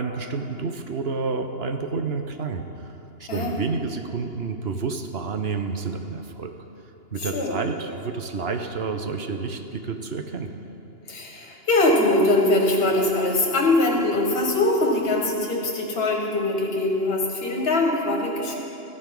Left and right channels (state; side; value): late; right; 2.9 ms